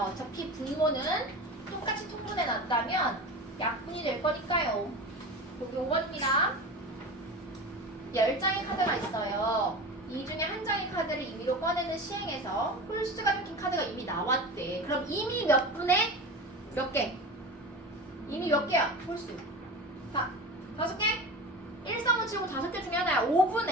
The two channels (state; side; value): normal; both; correlation 0.30